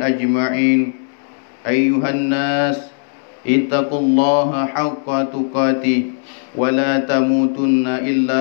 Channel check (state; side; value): silent; right; digital silence